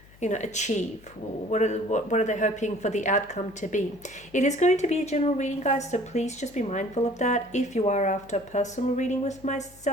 achieve? What are they hoping for the outcome to be? It is going to be a general reading, guys, so please just be mindful of that. If you are after a personal reading with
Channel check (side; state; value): left; noise; hum, 25 dB below the sound